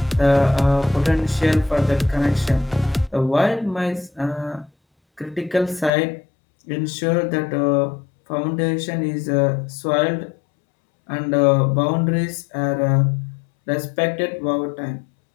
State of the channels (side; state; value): right; drops out; at 5.9 s